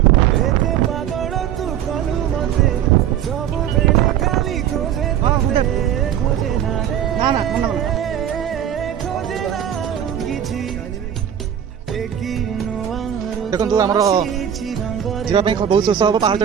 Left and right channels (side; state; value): left; quieter; 9.8 dB